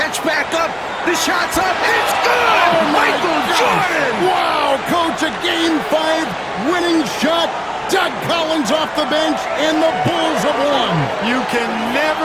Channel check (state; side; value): identical; both; correlation 1.00